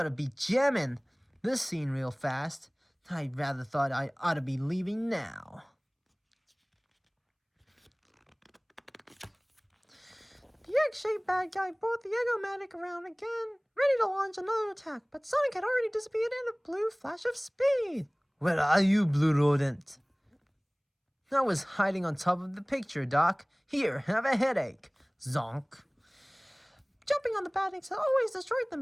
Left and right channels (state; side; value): identical; both; correlation 1.00